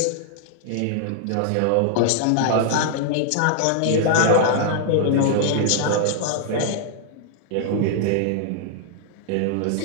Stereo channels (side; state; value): both; different; correlation -0.01